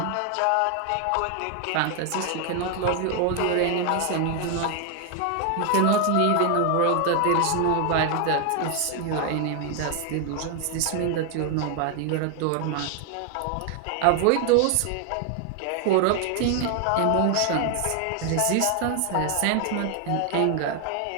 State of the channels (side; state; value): both; different; correlation 0.00